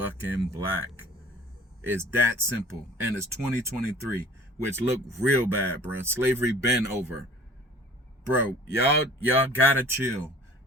black. It's that simple. And it's 2023, which look real bad, bro. Slavery been over. Bro, y'all gotta chill.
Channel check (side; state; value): both; normal; correlation 0.47